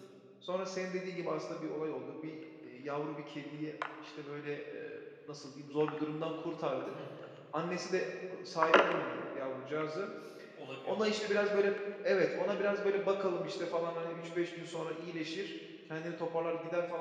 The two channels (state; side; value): identical; both; correlation 1.00